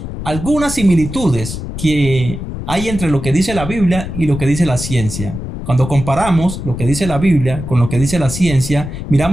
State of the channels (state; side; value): noise; left; rumble, 8 dB below the sound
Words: algunas similitudes que hay entre lo que dice la Biblia y lo que dice la ciencia. Cuando comparamos lo que dice la Biblia con lo que dice la ciencia,